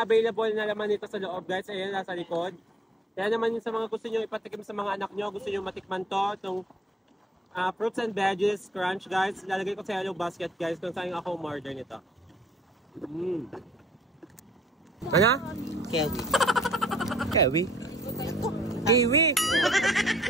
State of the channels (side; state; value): both; normal; correlation 0.60